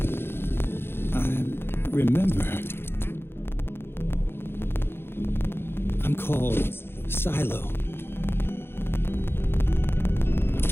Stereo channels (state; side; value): late; right; 0.11 ms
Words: Remember, I'm called Silo.